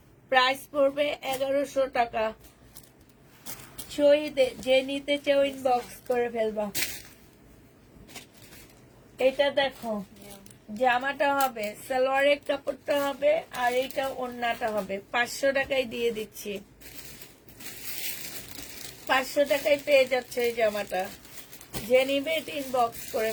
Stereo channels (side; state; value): both; identical; correlation 1.00